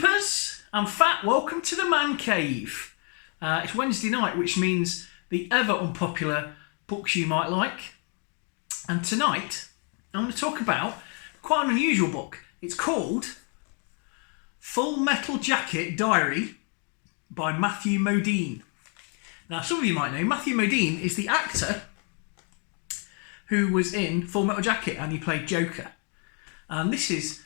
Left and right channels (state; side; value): quieter; right; 38.8 dB